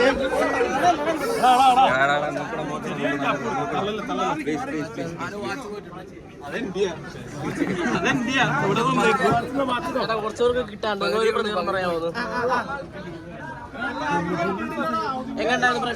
കുറച്ചുപേർക്ക് കിട്ടാണ്ട് ഒരു പ്രതികരണം പറയാമോ? എങ്ങനെയുണ്ടായിരുന്നു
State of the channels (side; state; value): both; identical; correlation 1.00